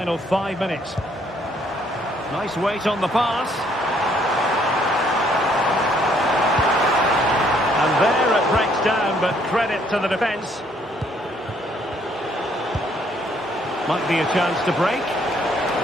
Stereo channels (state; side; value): normal; both; correlation 0.66